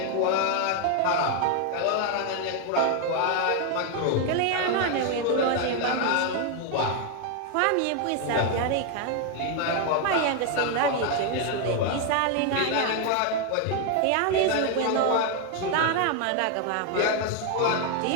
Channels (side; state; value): both; different; correlation 0.01